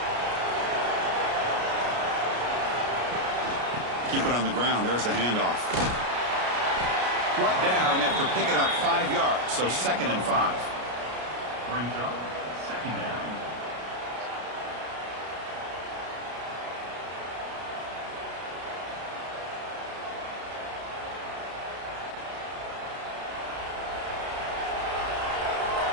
Keep it on the ground. There's the handoff. Brought down after picking up 5 yards, so 2nd and 5. Brings up 2nd down.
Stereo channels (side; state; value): left; late; 33 ms